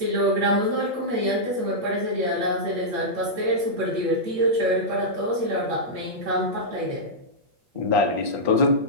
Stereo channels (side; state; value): left; late; 8.4 ms